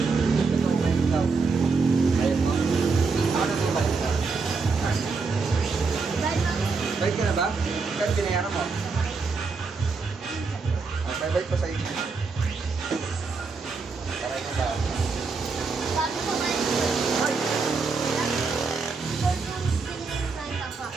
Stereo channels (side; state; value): left; quieter; 4.5 dB